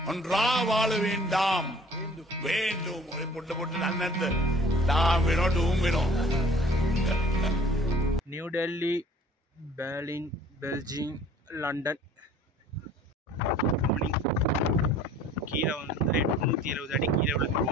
ஒன்றா வாழ வேண்டாம் வேண்டும் பொட்டு நன்னது நாம் வேணும் new Delhi, Berlin, Belgium, London. கீழே வந்து 870 அடி கீழே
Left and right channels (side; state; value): both; normal; correlation 0.51